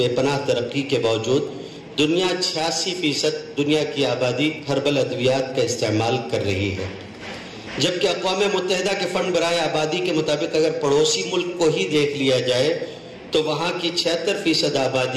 پناہ ترقی کے باوجود دنیا 86% دنیا کی آبادی ہربل ادویات کا استعمال کر رہی ہے، جبکہ اقوام متحدہ کے فنڈ برائے آبادی کے مطابق اگر پڑوسی ملک کو ہی دیکھ لیا جائے تو وہاں کی 76%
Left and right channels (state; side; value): identical; both; correlation 1.00